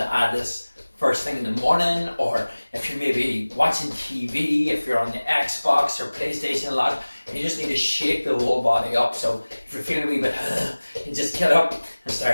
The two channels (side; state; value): both; inverted; correlation -1.00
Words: add this first thing in the morning, or if you're maybe watching TV, if you're on the Xbox or PlayStation a lot, and you just need to shake the whole body up. So if you're feeling a wee bit, you just get up and